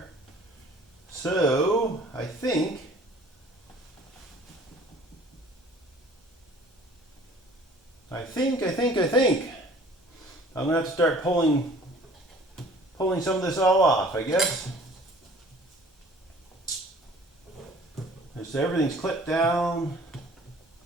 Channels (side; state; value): both; normal; correlation 0.51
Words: So, I think I'm gonna have to start pulling some of this all off, I guess. So everything's clipped down.